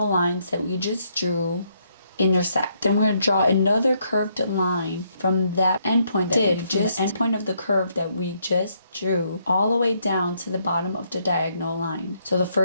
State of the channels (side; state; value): both; inverted; correlation -0.73